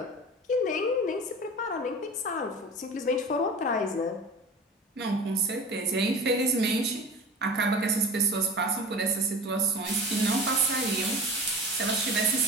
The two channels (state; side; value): normal; both; correlation 0.36